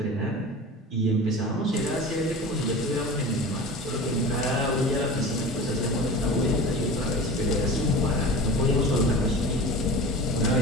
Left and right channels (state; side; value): normal; both; correlation 0.34